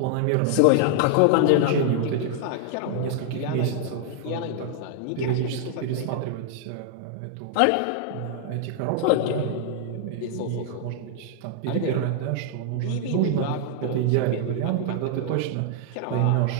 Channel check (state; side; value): different; both; correlation 0.00